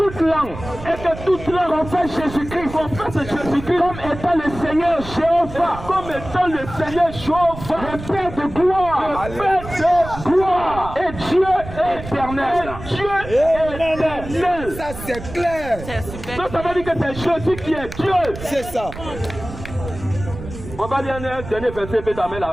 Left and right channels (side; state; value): right; noise; rumble, 12 dB below the sound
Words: langue confesse Jésus-Christ comme étant le Seigneur Jéhovah, le Père de gloire, et Dieu éternel. Ça c'est clair. Donc ça veut dire que c'est Jésus qui est Dieu. C'est ça. On va lire un dernier verset, puis t'amènes